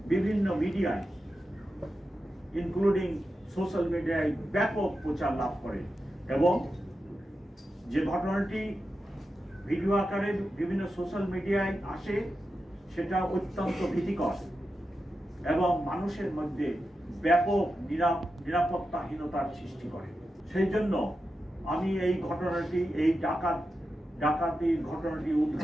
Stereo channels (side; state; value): both; normal; correlation 0.90